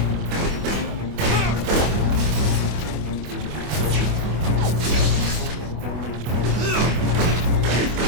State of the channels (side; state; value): left; late; 25 ms